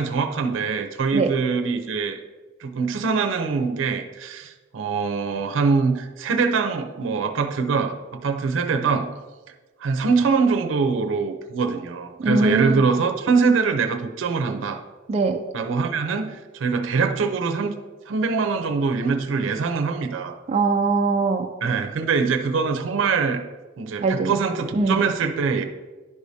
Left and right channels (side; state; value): left; quieter; 4.3 dB